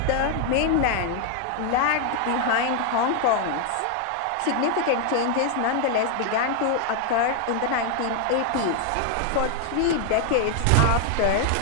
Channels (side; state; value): both; different; correlation 0.00